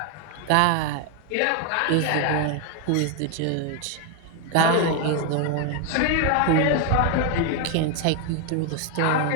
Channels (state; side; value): different; both; correlation 0.01